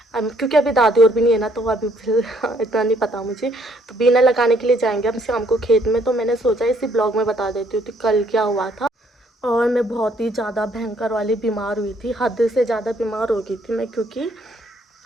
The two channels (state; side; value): normal; both; correlation 0.66